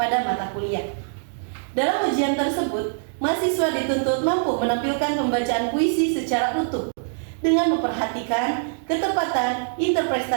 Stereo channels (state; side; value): silent; left; digital silence